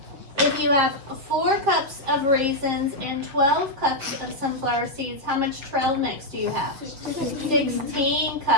If you have 4 cups of raisins and 12 cups of sunflower seeds, how much trail mix do you have? 16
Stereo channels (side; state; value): left; late; 7.4 ms